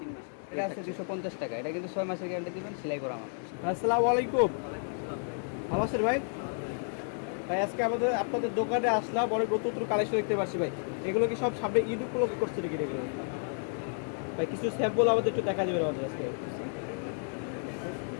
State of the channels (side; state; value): right; silent; 57 dB below the other